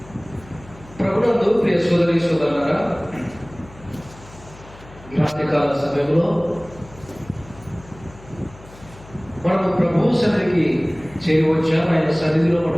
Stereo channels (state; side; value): noise; left; hum, 21 dB below the sound